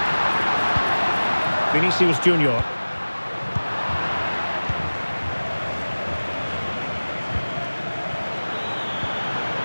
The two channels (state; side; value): inverted; both; correlation -1.00